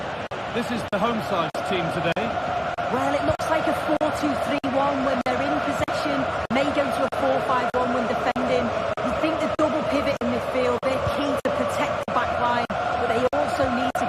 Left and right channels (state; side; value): identical; both; correlation 1.00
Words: This is the home side's team today. Well, it looks like a 4-2-3-1 when they're in possession. May go to a 4-5-1 when defending. You think the double pivot in midfield, they're key to protect the back line, but they also need to